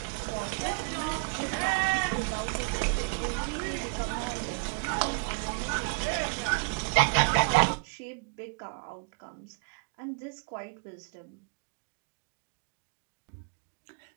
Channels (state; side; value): quieter; left; 33.8 dB